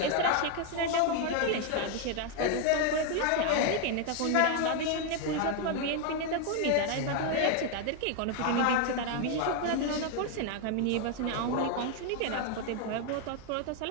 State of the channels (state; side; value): different; both; correlation 0.01